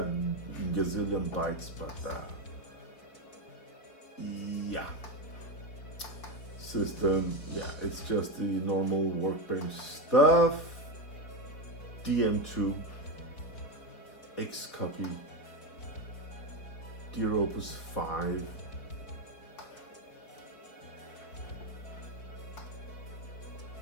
gazillion bytes, but yeah. System, yeah, it's just the normal workbench stuff. DM2, X copy, Dear Opus 5.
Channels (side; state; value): right; late; 4.3 ms